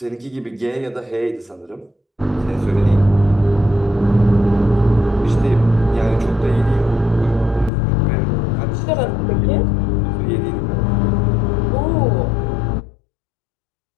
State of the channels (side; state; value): right; drops out; at 7.7 s